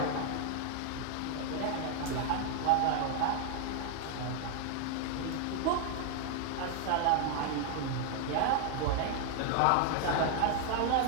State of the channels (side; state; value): both; different; correlation 0.00